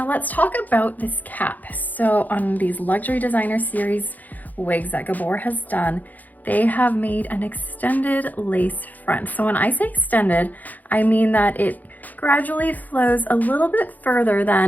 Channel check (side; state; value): right; late; 0.081 ms